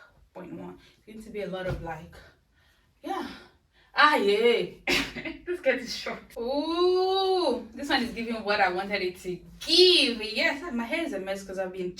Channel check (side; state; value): both; identical; correlation 1.00